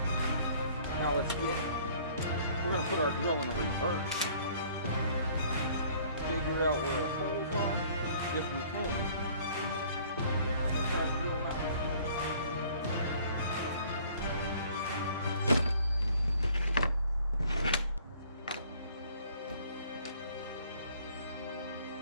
Now we're going to put our drill in a reverse. Figure out where our holes are, if we can, and then try to drill them out.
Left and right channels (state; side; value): inverted; both; correlation -0.55